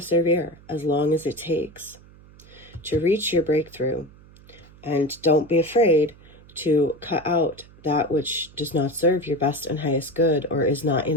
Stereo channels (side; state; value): right; noise; hum, 23 dB below the sound